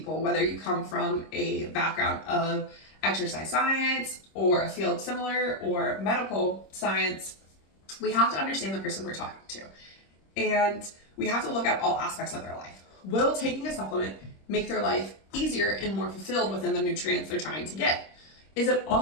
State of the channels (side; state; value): right; late; 26 ms